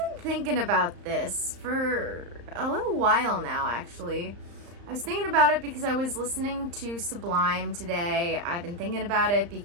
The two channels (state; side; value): late; left; 35 ms